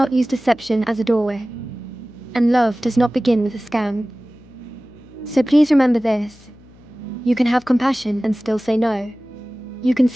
use deception as a doorway. And love does not begin with a scam. So please remember this. You can have compassion and still say no. You can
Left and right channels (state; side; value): noise; left; hum, 25 dB below the sound